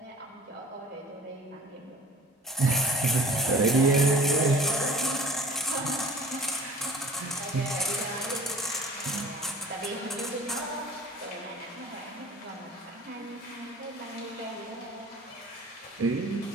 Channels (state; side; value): normal; both; correlation 0.46